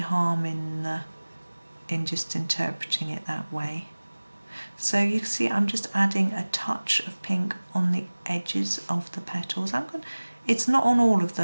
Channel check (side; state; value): both; inverted; correlation -1.00